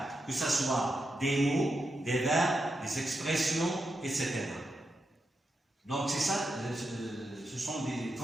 que ce soit des mots, des verbes, des expressions, etc. Donc c'est ça, ce sont des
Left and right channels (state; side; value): normal; both; correlation 0.86